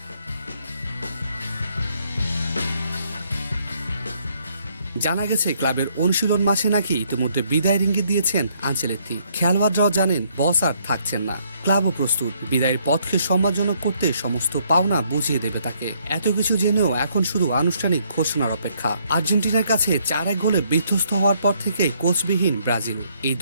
জানা গেছে ক্লাবের অনুশীলন মাসে নাকি ইতিমধ্যে বিদায়ের ইঙ্গিত দিয়েছেন আনচেলত্তি। খেলোয়াড়রাও জানেন বস আর থাকছেন না, ক্লাবও প্রস্তুত বিদায়ের পথকে সম্মানজনক করতে সমস্ত পাওনা বুঝিয়ে দেবে তাকে। এত কিছু জেনেও এখন শুধু আনুষ্ঠানিক ঘোষণার অপেক্ষা। আর্জেন্টিনার কাছে 4-1 গোলে বিধ্বস্ত হওয়ার পর থেকে কোচবিহীন ব্রাজিল এই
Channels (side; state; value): both; inverted; correlation -0.69